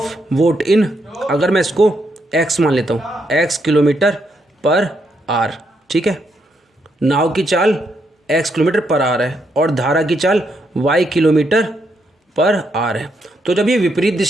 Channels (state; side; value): normal; both; correlation 0.78